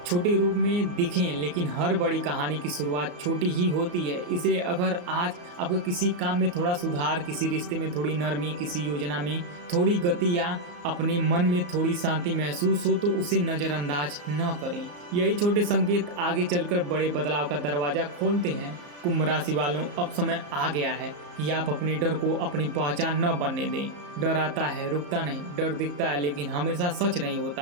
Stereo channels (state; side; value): late; left; 34 ms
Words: छोटे रूप में दिखें, लेकिन हर बड़ी कहानी की शुरुआत छोटी ही होती है। इसलिए अगर आज आपको किसी काम में थोड़ा सुधार, किसी रिश्ते में थोड़ी नरमी, किसी योजना में थोड़ी गति या अपने मन में थोड़ी शांति महसूस हो तो उसे नज़रअंदाज न करें। यही छोटे संकेत आगे चलकर बड़े बदलाव का दरवाजा खोलते हैं। कुंभ राशि वालों, अब समय आ गया है कि आप अपने डर को अपनी पहचान न बनने दें। डर आता है, रुकता नहीं। डर दिखता है लेकिन हमेशा सच नहीं